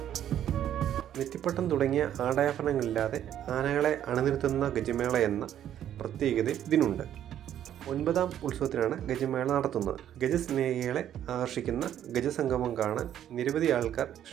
നെറ്റിപ്പട്ടം തുടങ്ങിയ ആടാഭരണങ്ങളില്ലാതെ ആനകളെ അണിനിരത്തുന്ന ഗജമേള എന്ന പ്രത്യേകത ഇതിനുണ്ട്. 9ാം ഉത്സവത്തിനാണ് ഗജമേള നടത്തുന്നത്. ഗജസ്നേഹികളെ ആകർഷിക്കുന്ന ഗജസംഗമം കാണാൻ നിരവധി ആൾക്കാർ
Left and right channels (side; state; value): left; quieter; 10.7 dB